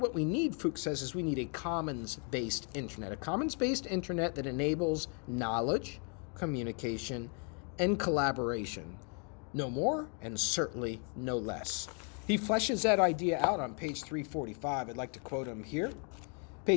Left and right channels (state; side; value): quieter; right; 39.2 dB